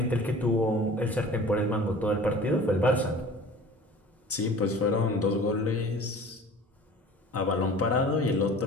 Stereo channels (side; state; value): both; normal; correlation 0.43